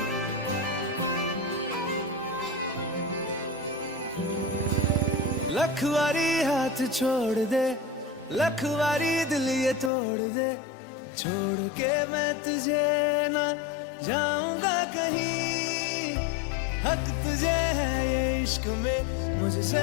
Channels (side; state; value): right; drops out; at 9.9 s